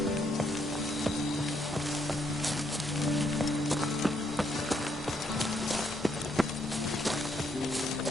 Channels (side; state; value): both; normal; correlation 0.74